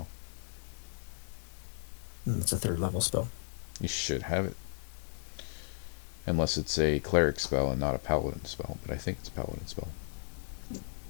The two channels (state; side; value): silent; right; digital silence